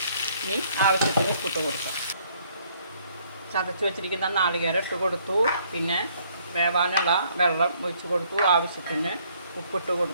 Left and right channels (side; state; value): both; inverted; correlation -0.65